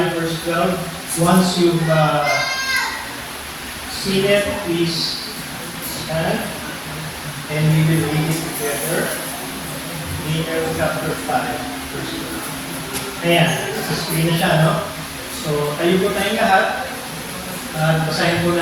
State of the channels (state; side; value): identical; both; correlation 1.00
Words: verse 12. Once you've seen it, please stand and we will read it together. Daniel chapter 5 verse 12. Ayan, sa screen na siya, no? So, tayo po tayong lahat. Basahin po